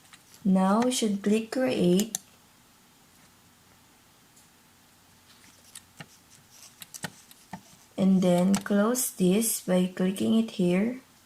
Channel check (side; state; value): both; identical; correlation 1.00